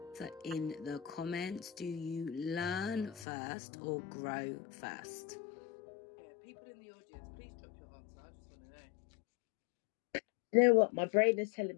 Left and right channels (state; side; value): drops out; right; at 3.2 s